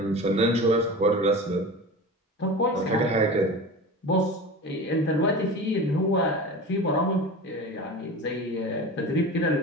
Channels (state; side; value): normal; both; correlation 0.31